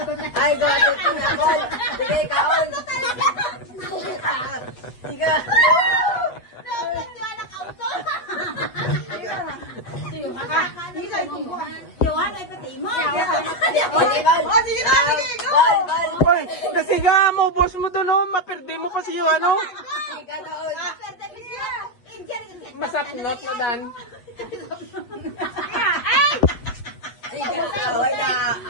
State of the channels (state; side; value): late; right; 8.1 ms